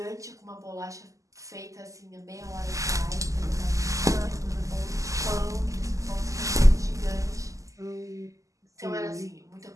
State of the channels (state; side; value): late; left; 0.16 ms